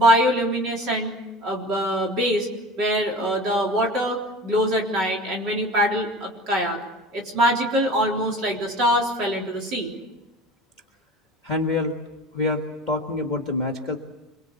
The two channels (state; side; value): normal; both; correlation 0.37